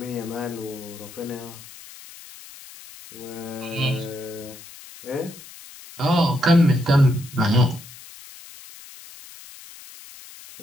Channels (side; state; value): left; noise; hiss, 18 dB below the sound